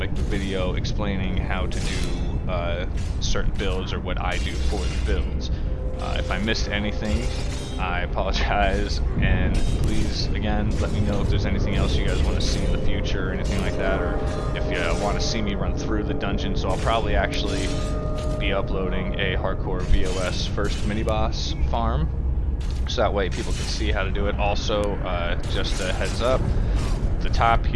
the video explaining how to do certain builds or what I do for the builds. If I missed anything, I apologize, and please, again, let me know if there's anything else you guys want to see in the future or anything like that, or if you want to see me run through the dungeon. So I'll probably actually be uploading a hardcore VOS first mini-boss farm, so that way people can see how to do it. Also, just a heads up, the top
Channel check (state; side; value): identical; both; correlation 1.00